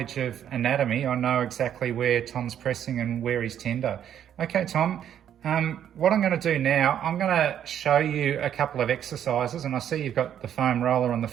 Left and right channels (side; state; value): left; quieter; 9.8 dB